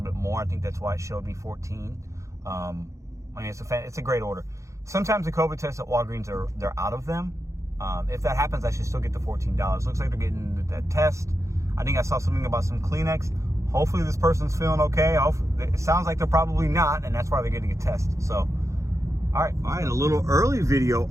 bit more. I think that's why it showed me 14. I mean, it's a great order. Sometimes the COVID tests at Walgreens they're out of them. If that happens, I should still get the $14. Looks like they're getting that test. I think I saw something about some Kleenex. Hopefully this person's feeling okay. It sounds like they're probably not, and that's why they're getting a test. So, all right, a little early video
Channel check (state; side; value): late; left; 0.15 ms